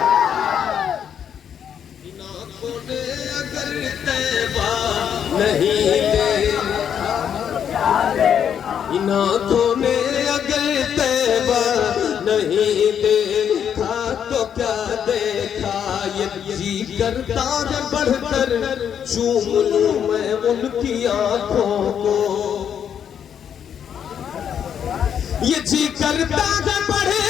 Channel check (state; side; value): quieter; right; 8.5 dB